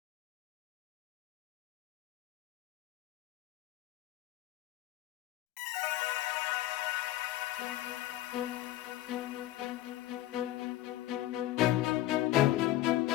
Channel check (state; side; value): quieter; right; 15.1 dB